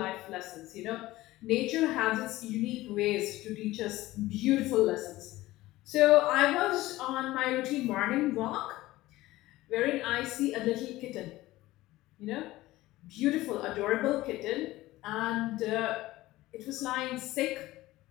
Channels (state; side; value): quieter; right; 17.4 dB